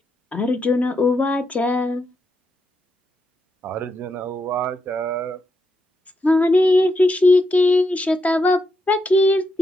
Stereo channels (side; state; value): both; normal; correlation 0.82